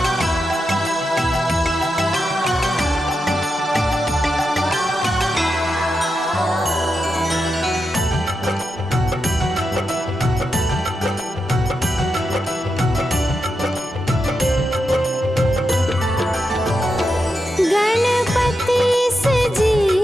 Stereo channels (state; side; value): normal; both; correlation 0.87